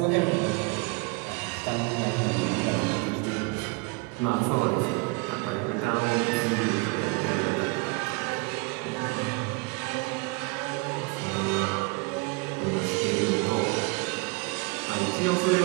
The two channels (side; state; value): left; quieter; 27.7 dB